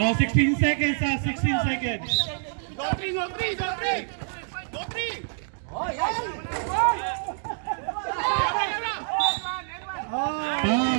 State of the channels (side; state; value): left; silent; digital silence